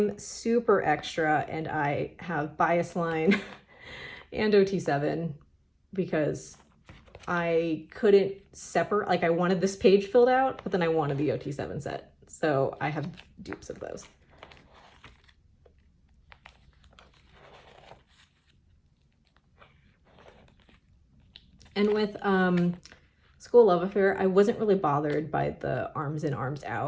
super extra, and I have Bias Line and OT7 because I couldn't separate, like I wanted this page filled out, but then I wanted the OT7 set. So I have dupes of those. And with School Love Affair, I wasn't really bothered by the arms in, arms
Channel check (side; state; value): both; identical; correlation 1.00